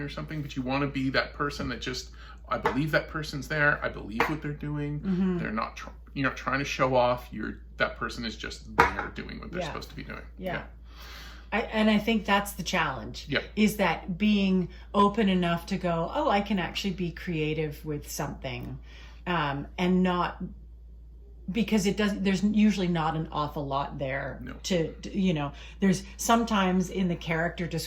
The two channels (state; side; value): identical; both; correlation 1.00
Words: something, but you want to be that person that just I believe that person's there. I believe what they're doing. Mm-hmm. They're not. You're not trying to show off. That person is just there doing what they're supposed to be doing. Yeah. I think that's the challenge. Yep. Is that being open enough to go, oh, I can actually be creative with something, and not. Because there's usually not an awful lot there No. to there's sometimes in the character